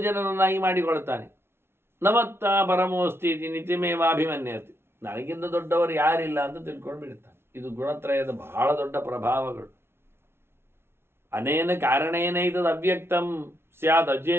ಜನರನ್ನಾಗಿ ಮಾಡಿಕೊಳ್ತಾನೆ. ನಮತ್ತ ಪರಮೋಸ್ತಿ ನಿತಿಮೇವಾಭಿಮನ್ಯತೆ. ನನಗಿಂತ ದೊಡ್ಡವರು ಯಾರಿಲ್ಲ ಅಂತ ತಿಳ್ಕೊಂಡು ಬಿಡ್ತಾನೆ. ಇದು ಗುಣತ್ರಯದ ಬಹಳ ದೊಡ್ಡ ಪ್ರಭಾವಗಳು. ಅನೇನ ಕಾರಣೇನ ಇದದು ಅವ್ಯಕ್ತಂ ಸ್ಯಾದ್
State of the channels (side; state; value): left; late; 0.12 ms